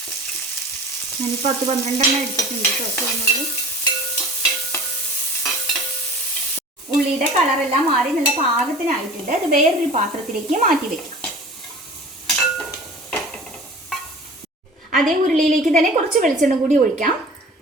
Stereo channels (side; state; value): both; normal; correlation 0.41